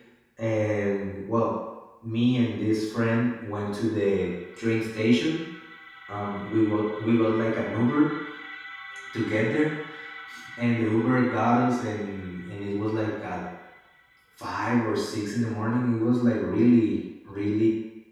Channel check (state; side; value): identical; both; correlation 1.00